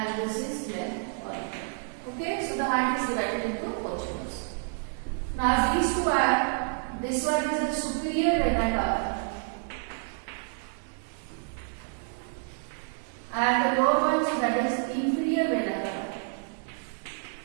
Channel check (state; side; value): silent; left; 57 dB below the other